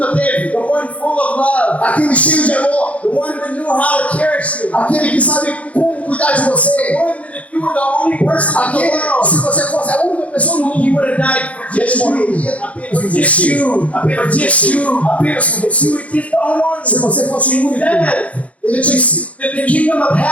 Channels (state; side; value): late; right; 0.065 ms